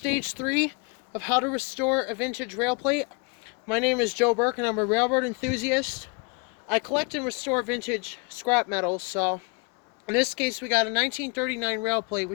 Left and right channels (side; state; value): right; quieter; 32.3 dB